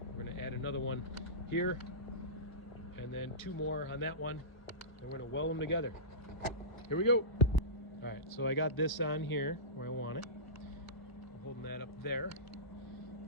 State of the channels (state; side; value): late; right; 1.0 ms